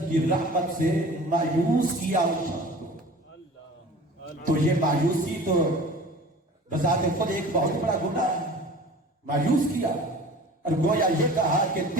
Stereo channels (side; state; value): both; normal; correlation 0.42